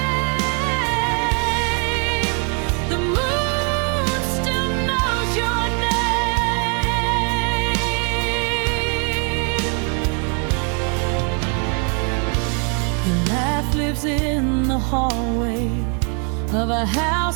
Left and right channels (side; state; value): left; quieter; 38.8 dB